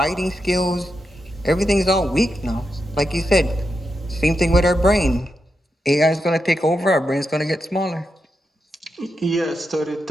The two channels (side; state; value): both; normal; correlation 0.86